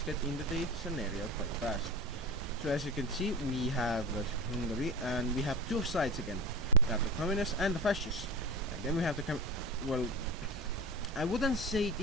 get into the scenario quite fast. So as you can see, we have Hungary, and we have two sides again. We have the Communists and the Fascists. And then we have the well, I wouldn't say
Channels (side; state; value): both; normal; correlation 0.30